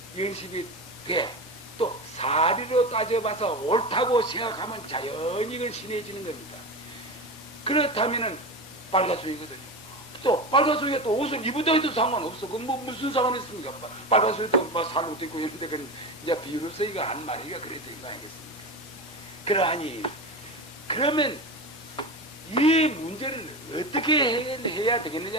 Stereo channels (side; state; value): both; normal; correlation 0.24